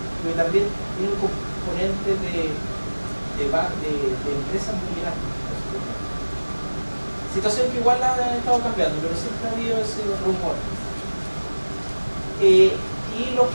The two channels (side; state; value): both; inverted; correlation -1.00